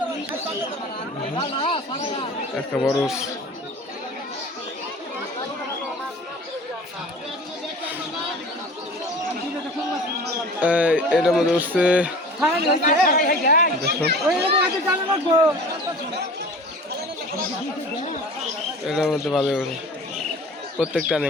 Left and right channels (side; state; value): both; normal; correlation 0.41